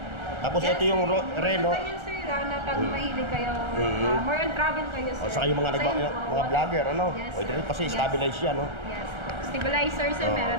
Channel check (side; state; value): left; late; 1.4 ms